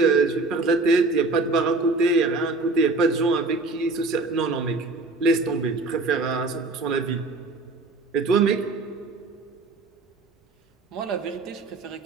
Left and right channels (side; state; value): left; quieter; 3.4 dB